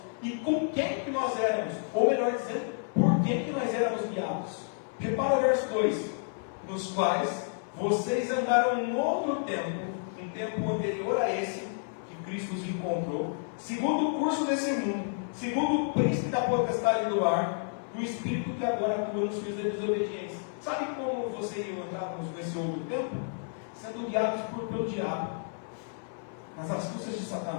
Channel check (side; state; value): right; silent; 57 dB below the other